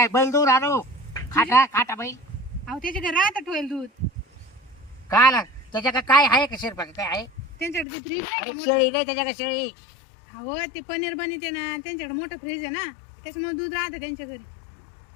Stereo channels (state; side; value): drops out; right; at 7.9 s